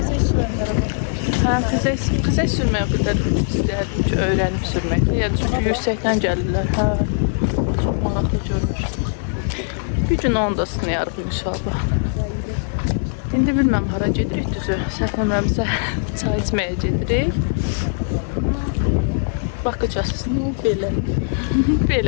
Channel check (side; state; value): right; silent; digital silence